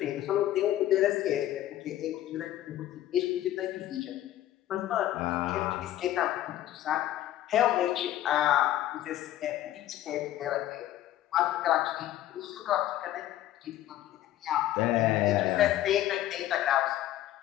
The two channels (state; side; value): quieter; right; 13.3 dB